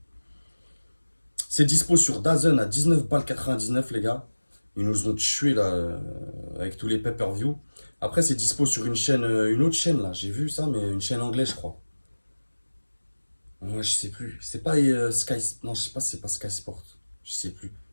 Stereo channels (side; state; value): both; inverted; correlation -1.00